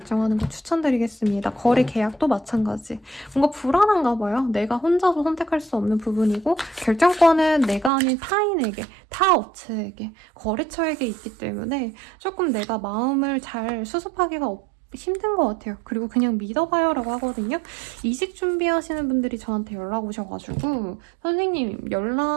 거 추천드리겠습니다. 거래 계약도 마찬가지. 뭔가 불안한가 봐요. 내가 혼자서 선택할 수 없는 부분이고 결정권은 내가 아닌 타인에게, 타 업체에게, 거래처에게 있기 때문에 조금 내가 마음을 잘 수습하기가 힘든 것 같아요. 그리고 그냥 믿어봐요라고 하거든요. 이직 준비하시는 분들이 저한테 연락 오셔가지고 선생님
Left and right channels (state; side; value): drops out; left; at 7.9 s